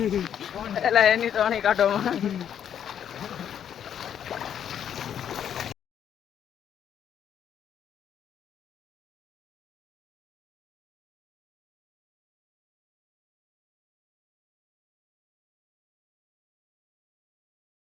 એટલે એની તો આની કાઢો.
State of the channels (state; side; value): quieter; right; 9.1 dB